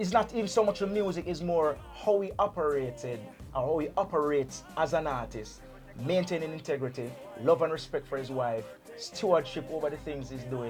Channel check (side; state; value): both; identical; correlation 1.00